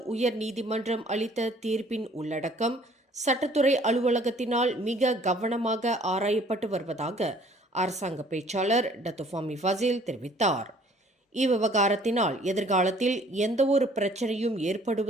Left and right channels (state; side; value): normal; both; correlation 0.57